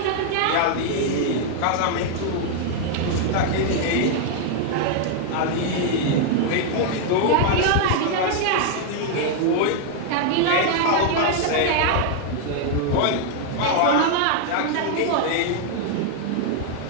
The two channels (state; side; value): different; both; correlation 0.00